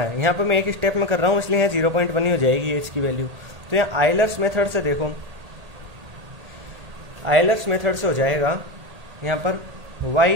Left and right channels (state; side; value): late; left; 1.8 ms